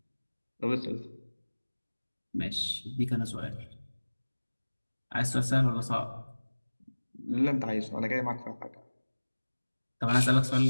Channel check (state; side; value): inverted; both; correlation -1.00